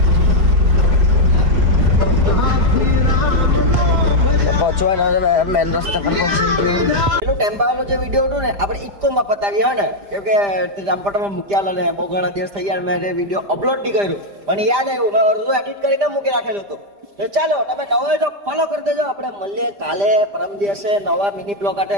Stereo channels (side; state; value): left; late; 5.0 ms